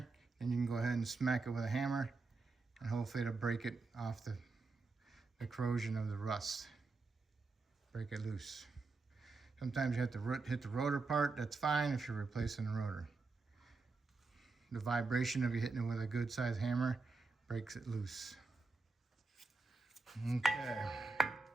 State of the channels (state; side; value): quieter; left; 3.9 dB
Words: And you can go ahead and smack it with a hammer and hopefully it'll break it off the corrosion of the rust. Break it loose. Sometimes you have to hit the rotor part. That's fine if you're replacing the rotor. The vibration of you hitting it with a good sized hammer breaks it loose. Okay.